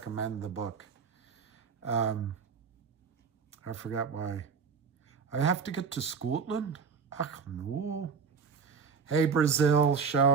the book. I forgot why. I have to get to Scotland? Ach, no. Hey, Brazil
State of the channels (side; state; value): left; quieter; 5.8 dB